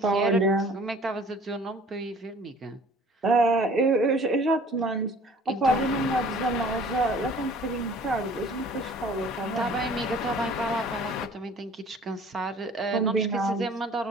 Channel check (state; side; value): normal; both; correlation 0.50